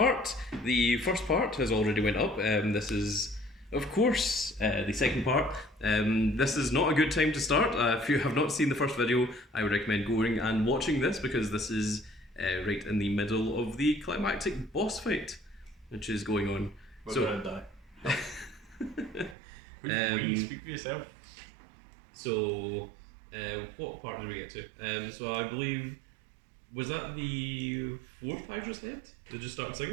The first part has already went up. This is, of course, the second part. This is not a good time to start. If you have not seen the first video, I would recommend going and watching this because this is right in the middle of the climactic boss fight, which is going on. We're gonna die. Speak for yourself. So, what part did we get to? So I believe. Was that the fourth Hydra's head? Did it just start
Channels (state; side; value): drops out; left; at 19.4 s